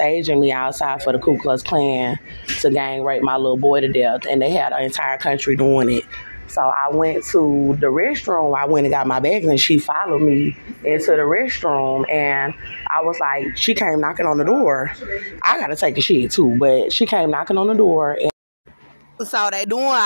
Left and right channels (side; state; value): both; inverted; correlation -1.00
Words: me outside for the Ku Klux Klan to gang rape my little boy to death, and they had the entire country doing it. So I went to the restroom. I went and got my bags, and she followed me into the restroom, and I was like, she came knocking on the door. I gotta take a shit too, but she came knocking on the door. And so they doing